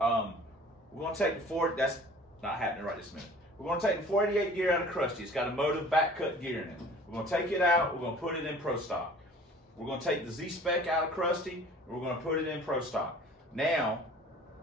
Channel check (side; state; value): both; normal; correlation 0.48